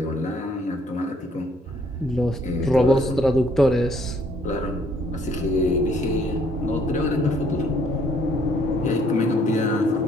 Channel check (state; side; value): normal; both; correlation 0.64